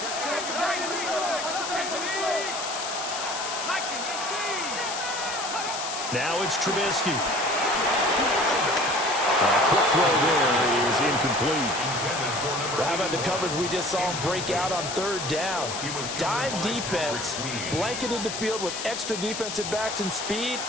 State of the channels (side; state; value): left; noise; hiss, 5 dB below the sound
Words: Now it's Trubisky. A quick throw there is incomplete. How about the coverage we just saw him break out on third down? Dime defense, blanketed the field with extra defensive backs and speed,